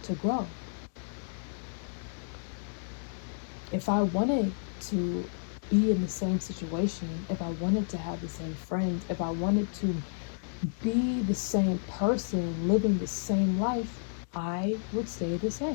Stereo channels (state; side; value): silent; right; digital silence